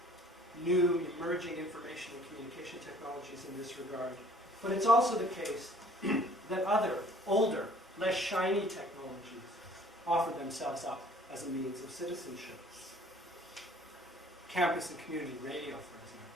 new emerging information and communication technologies in this regard, but it's also the case that other, older, less shiny technologies offer themselves up as a means of citizenship. Campus and community radio, for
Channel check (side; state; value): both; normal; correlation 0.54